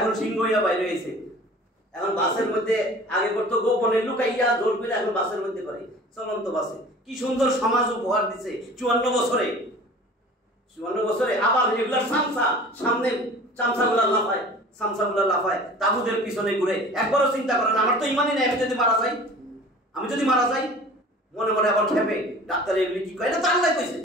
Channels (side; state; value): both; normal; correlation 0.43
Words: সিংহ হইয়া বাইরে হয়েছে। এখন বাসের মধ্যে আগে করতো গোপনে লুকাইয়া, জোর করে, এখন বাসের মধ্যে করে, চলন্ত বাসে। কি সুন্দর সমাজ উপহার দিছে 54 বছরে। 54 বছরে আবার রেগুলার সামসা, সামনে চামচাগুলা লাফায়, তাবুদের পিছনে ঘুরে। একবারও চিন্তা করেন, আমার তো ইমানই নেই, আমি যদি মারা যাই, মনে মনে আবার খেপে, ডাক্তার এগুলি কি কয়? এটা তো আল্লাহ কইছে,